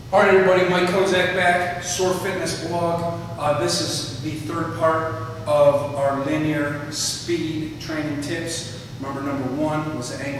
All right, everybody, Mike Kozak back, Sore Fitness blog. This is the third part of our linear speed training tips. Remember, number 1 was the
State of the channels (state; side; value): identical; both; correlation 1.00